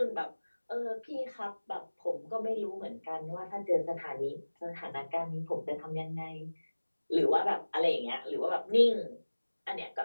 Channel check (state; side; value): inverted; both; correlation -1.00